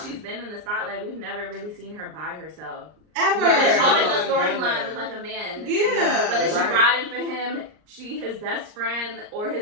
she's been in the spotlight, we've never really seen her by herself. ever. There's always a storyline with like a man. Yeah. Whether she riding for him, his best friend, or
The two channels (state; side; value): late; left; 39 ms